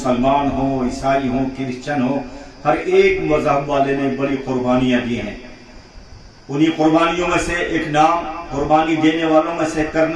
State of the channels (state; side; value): identical; both; correlation 1.00